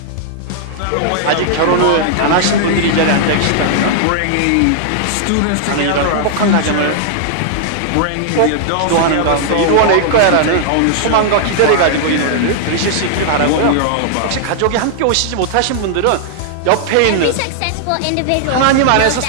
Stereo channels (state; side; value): different; both; correlation -0.01